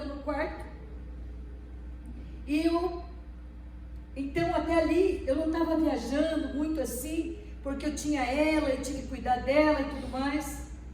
no quarto. E então até ali, eu não estava viajando muito assim, porque eu tinha ela, eu tinha que cuidar dela e tudo mais.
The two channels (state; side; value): identical; both; correlation 1.00